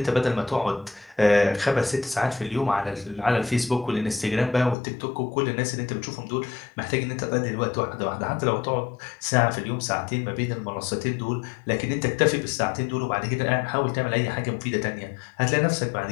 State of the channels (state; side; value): drops out; right; at 4.8 s